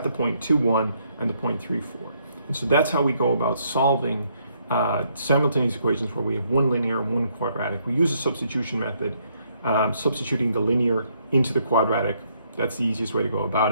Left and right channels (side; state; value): both; inverted; correlation -0.71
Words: the point 2, 1 and the point 3, 4. And so that's how we go about solving simultaneous equations where we have one linear and one quadratic. We use a substitution method, substituting the linear into the quadratic. That's the easiest way to go